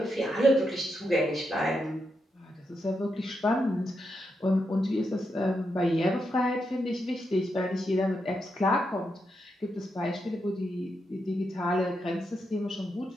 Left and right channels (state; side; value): normal; both; correlation 0.84